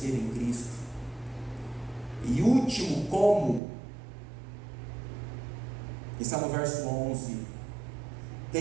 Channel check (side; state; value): left; drops out; at 3.6 s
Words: em Cristo. E último como Está no verso 11: